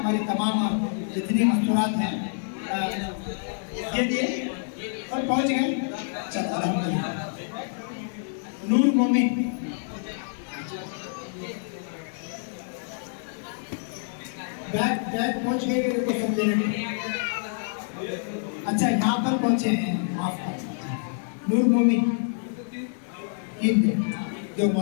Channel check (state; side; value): silent; right; digital silence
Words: तमाम जितनी मस्तूरात हैं ये दिए और पहुंच गए। चलो अल्हम्दुलिल्लाह। नूर मोमिन, बैग पहुंच गए, देखो सब देने में। अच्छा यहाँ पर पहुंचे हैं, माफ कर। नूर मोमिन जो